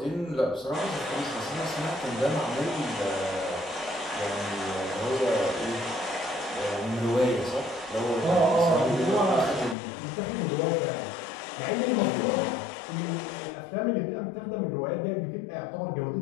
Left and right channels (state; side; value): drops out; right; at 9.8 s